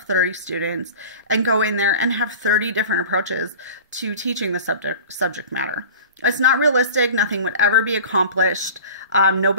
30 students and go in there and have 30 different approaches to teaching the subject matter. It's not realistic. Nothing would ever be accomplished.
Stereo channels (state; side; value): inverted; both; correlation -0.38